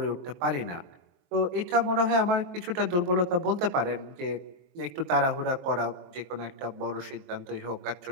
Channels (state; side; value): late; left; 22 ms